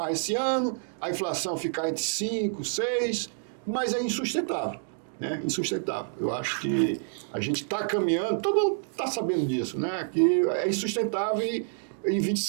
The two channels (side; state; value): left; silent; digital silence